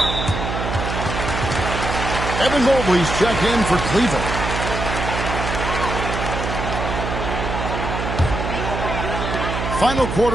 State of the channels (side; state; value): right; noise; hum, 4 dB below the sound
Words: Evan Mobley's checked in for Cleveland. Final